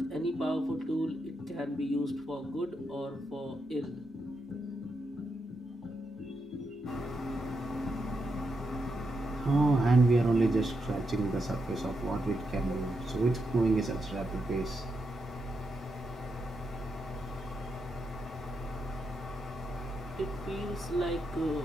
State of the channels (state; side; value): normal; both; correlation 0.84